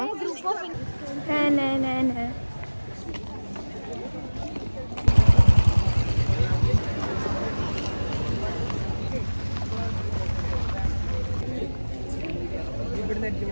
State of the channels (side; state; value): both; inverted; correlation -1.00